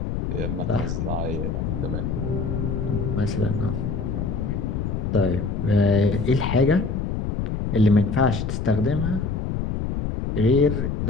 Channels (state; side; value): noise; left; rumble, 2 dB below the sound